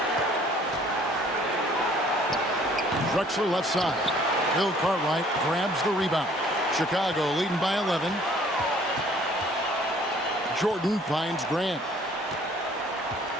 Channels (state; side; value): normal; both; correlation 0.57